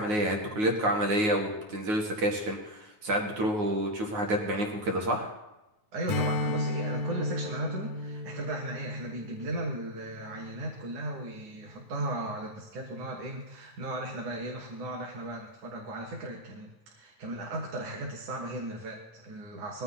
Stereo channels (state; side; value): late; left; 9.5 ms